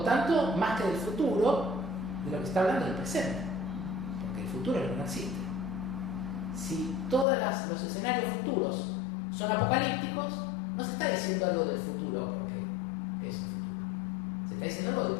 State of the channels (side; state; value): right; drops out; at 7.2 s